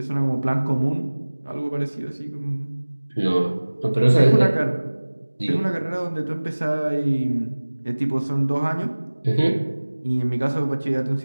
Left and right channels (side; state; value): both; inverted; correlation -1.00